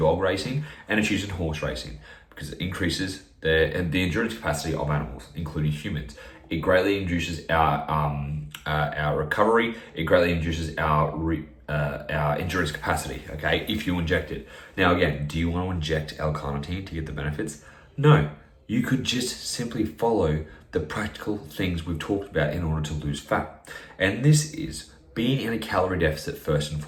racing and it's used in horse racing because it increases the endurance capacity of animals, including humans. It greatly induces our recovery. It greatly induces our endurance capacity, okay, if you inject it. Now again, do you want to inject L-carnitine to get the benefits? No, you could just simply follow the practical things we've talked about in order to lose fat. And this is being in a calorie deficit first and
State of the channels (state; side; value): identical; both; correlation 1.00